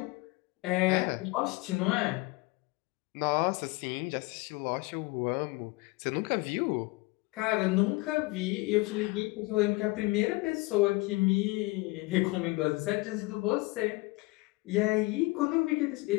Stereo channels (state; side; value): quieter; right; 23.7 dB